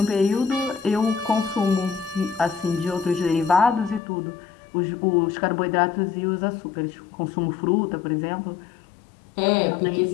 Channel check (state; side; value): drops out; right; at 4.0 s